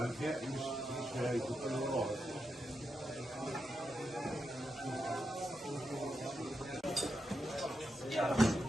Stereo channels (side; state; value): both; normal; correlation 0.86